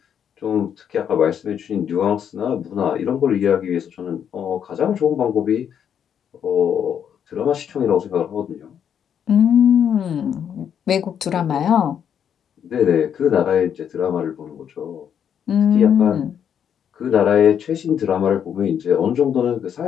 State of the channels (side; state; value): right; quieter; 8.5 dB